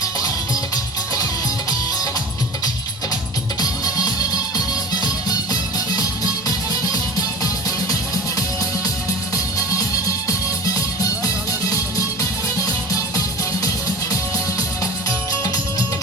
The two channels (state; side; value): normal; both; correlation 0.36